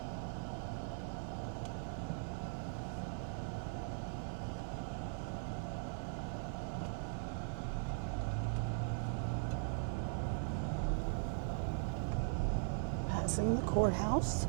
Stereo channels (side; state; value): left; silent; digital silence